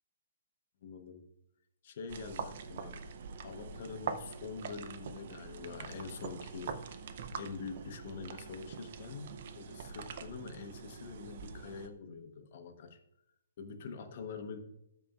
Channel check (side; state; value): both; inverted; correlation -0.52